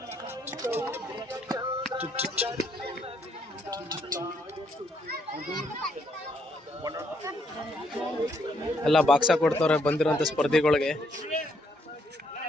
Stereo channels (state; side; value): normal; both; correlation 0.72